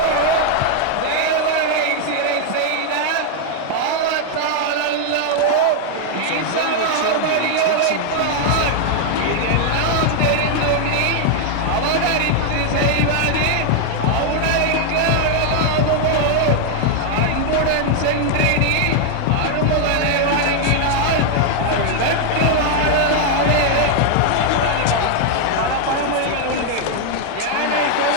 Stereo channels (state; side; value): different; both; correlation 0.00